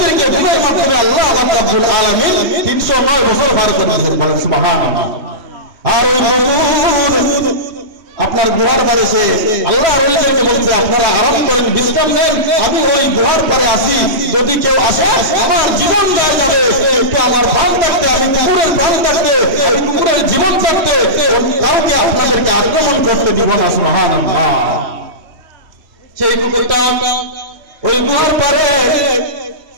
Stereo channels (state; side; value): late; left; 3.0 ms